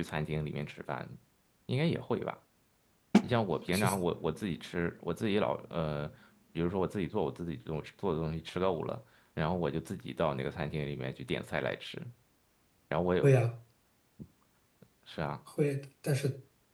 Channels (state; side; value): identical; both; correlation 1.00